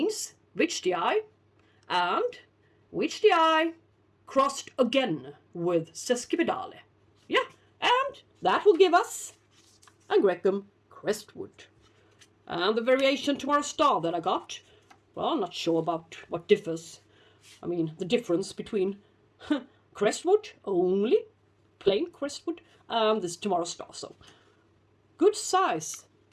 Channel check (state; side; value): identical; both; correlation 1.00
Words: Whichdii, and Whichdii crossed again with sesquipedale. Yeah, and that will give us Angraecum Crestwood. And the variation Tomorrow Star that I got, well, I'm not sure about what differs. I mean, the difference between Crestwood, only plain Crestwood, and this Tomorrow Star. So, good size,